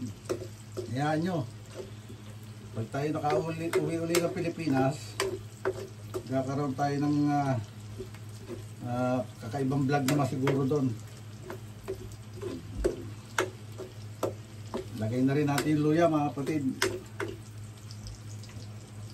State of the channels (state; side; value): identical; both; correlation 1.00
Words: Hayaan nyo. Pag tayo nakauwi-uli ng Pilipinas, kakaroon tayo ng kakaibang vlog naman siguro doon. Lagay na rin natin yung luya mga kapatid.